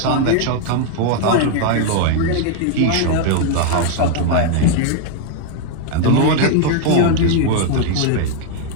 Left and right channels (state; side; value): different; both; correlation 0.00